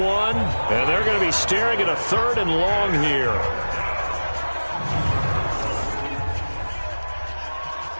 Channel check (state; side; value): inverted; both; correlation -1.00